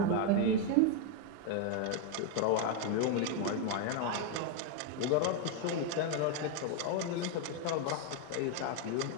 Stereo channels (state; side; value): different; both; correlation 0.00